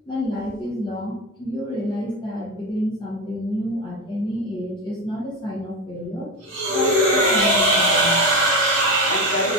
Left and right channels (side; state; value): both; normal; correlation 0.19